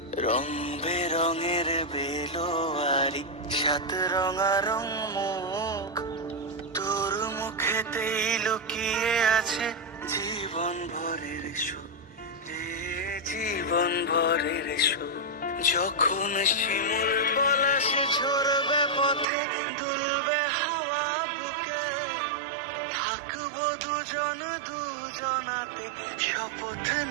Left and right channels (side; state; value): left; drops out; at 19.2 s